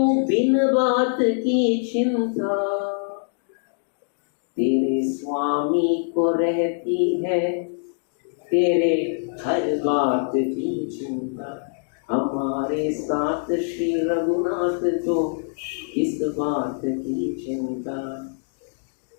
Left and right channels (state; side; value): silent; right; digital silence